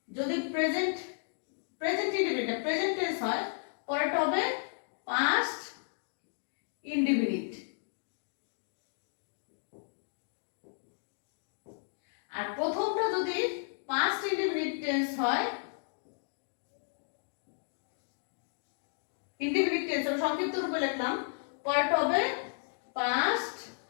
যদি প্রেজেন্ট ইনডিফিনিট প্রেজেন্ট টেন্স হয়, পরেরটা হবে পাস্ট ইনডিফিনিট। আর প্রথমটা যদি পাস্ট ইনডিফিনিট টেন্স হয়, ইনডিফিনিট টেন্স আমি সংক্ষিপ্ত রূপে লিখলাম, পরেরটা হবে পাস্ট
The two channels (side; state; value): right; silent; digital silence